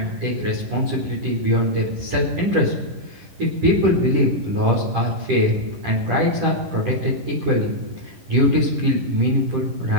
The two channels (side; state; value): left; late; 11 ms